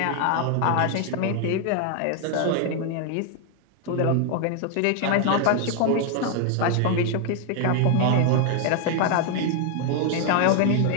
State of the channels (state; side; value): different; both; correlation 0.00